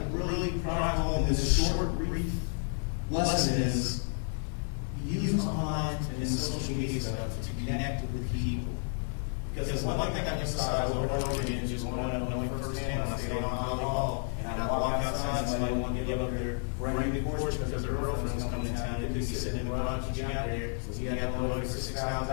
really drive home in this short, brief lesson is use online and social media stuff to connect with people. Because one thing I emphasize over and over again, just growing up knowing firsthand when I stayed on Holly Hall, and I walk outside and somebody wanted to give up their brand new Porsche because their girlfriend was coming to town, they couldn't be sitting in the garage when she got there, so you got them loaded for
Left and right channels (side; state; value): right; silent; 57 dB below the other